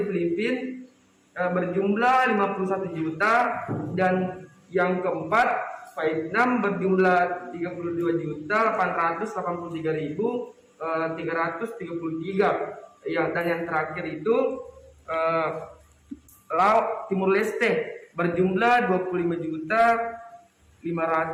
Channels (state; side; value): identical; both; correlation 1.00